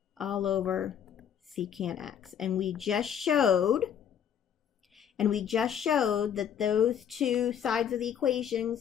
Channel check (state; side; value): quieter; right; 8.7 dB